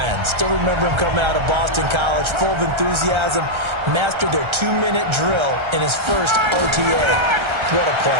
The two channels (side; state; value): left; late; 1.3 ms